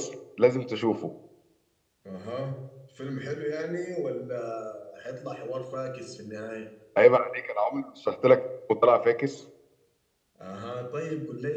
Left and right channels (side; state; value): both; identical; correlation 1.00